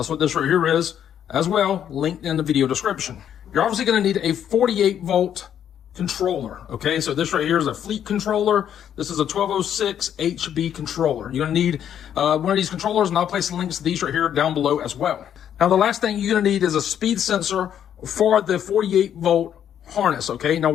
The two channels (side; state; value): right; quieter; 9.6 dB